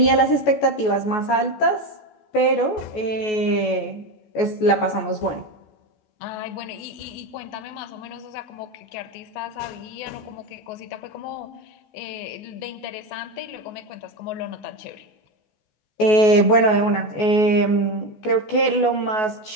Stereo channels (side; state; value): right; late; 14 ms